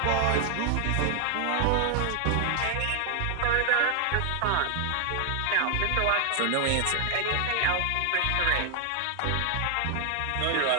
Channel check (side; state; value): both; different; correlation 0.00